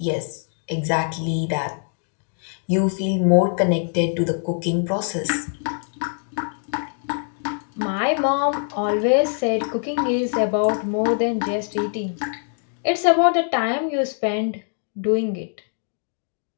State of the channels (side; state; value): right; silent; 60 dB below the other